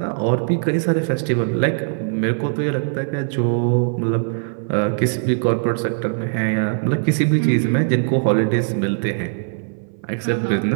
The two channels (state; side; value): silent; left; 58 dB below the other